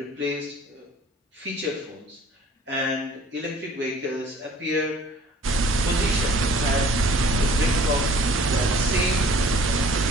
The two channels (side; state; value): both; normal; correlation 0.52